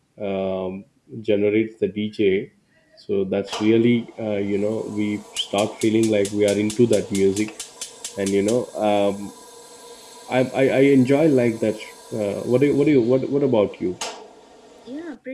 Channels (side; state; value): both; identical; correlation 1.00